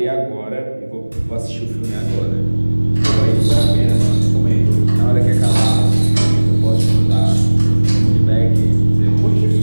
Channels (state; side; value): inverted; both; correlation -1.00